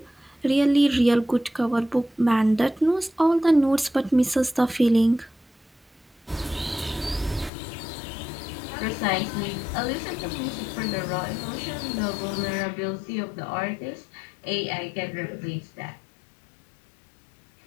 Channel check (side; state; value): right; drops out; at 7.5 s